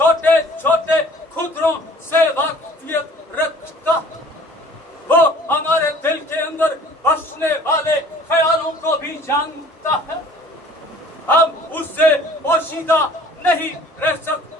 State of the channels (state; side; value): normal; both; correlation 0.51